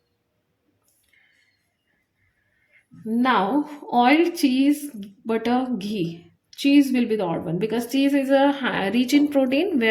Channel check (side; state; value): both; identical; correlation 1.00